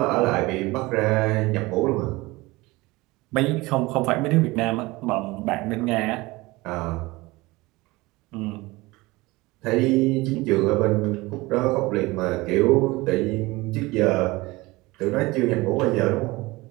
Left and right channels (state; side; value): quieter; left; 21.6 dB